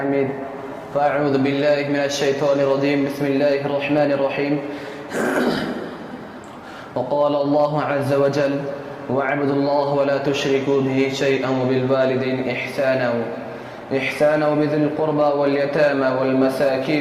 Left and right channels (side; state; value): both; identical; correlation 1.00